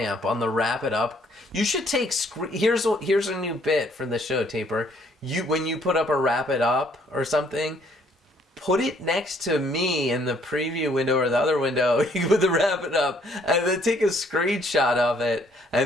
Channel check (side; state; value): both; normal; correlation 0.65